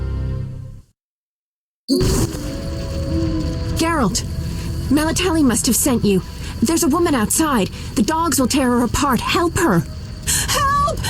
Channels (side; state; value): both; identical; correlation 1.00